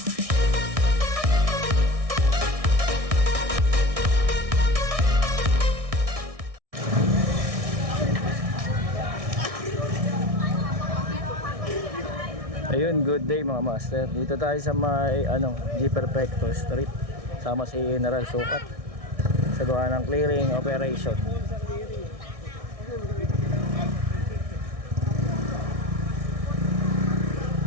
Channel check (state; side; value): late; left; 1.6 ms